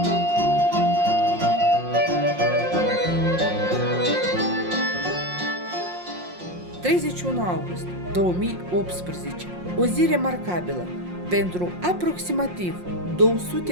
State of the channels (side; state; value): left; late; 5.6 ms